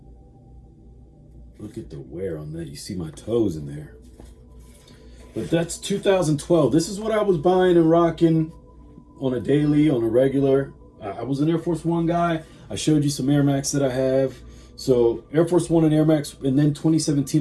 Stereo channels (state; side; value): identical; both; correlation 1.00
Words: Look at the wear on that. You see my toes in there. But that's 2012. This is what I was buying and rocking on a daily, on a regular. I was an Air Force One guy. I showed you some Air Max that I have. So Air Force One and Air Max. And then